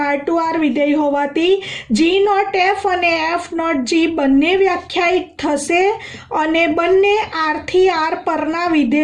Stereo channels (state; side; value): identical; both; correlation 1.00